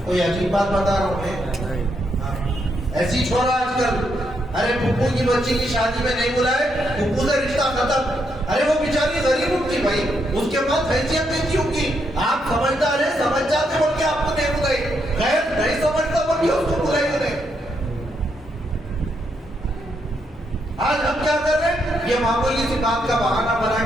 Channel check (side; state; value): both; normal; correlation 0.78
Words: کوئی عجیب بات بتا رہا ہوں میں؟ ایسی چھوڑا آج کل. ارے پھپھو کی بچی کی شادی میں نہیں بلائے، پھپھو سے رشتہ ختم. ارے وہ بیچاری غریب ہوگی بھائی، اس کے پاس حیثیت نہیں تھی ہوگی. آپ سمجھدار ہیں، سمجھ جاتے بول کے آپ کو نہیں بلائی. غیر نہیں سمجھتا بول کے اس کو بلائی نہیں. آج ہم کیا کر رہے ہیں؟ یہ معمولی سی بات کا بہانہ بنا